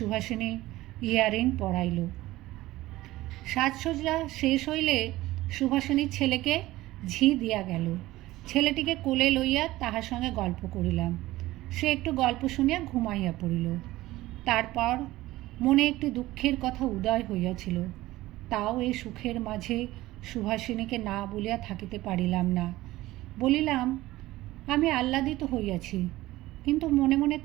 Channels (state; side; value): quieter; left; 17.2 dB